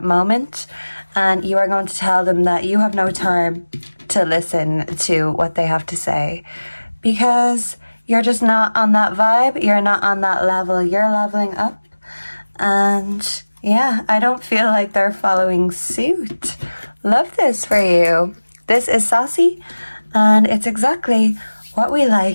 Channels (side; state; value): both; inverted; correlation -1.00